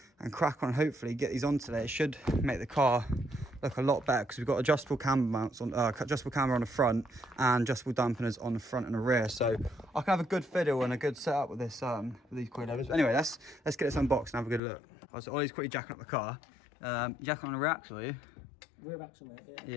and crack on, hopefully get these on today. It should make the car look a lot better because we've got adjustable camber mounts on, adjustable camber on the front and adjustable dampeners on the front and the rear. So I can have a good fiddle and a good setup with this with these coilovers. Anyway, let's get this unboxed and have a good look. Right, so Ollie's quickly jacking up the car. Jacking on the rear axle, are you? Rear axle, mate, yeah.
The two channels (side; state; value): right; drops out; at 14.6 s